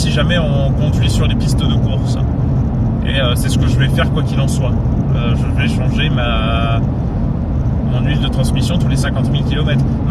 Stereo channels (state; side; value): identical; both; correlation 1.00